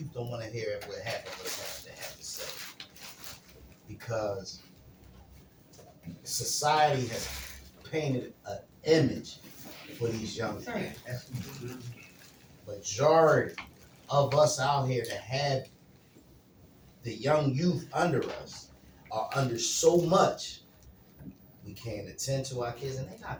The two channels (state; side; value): identical; both; correlation 1.00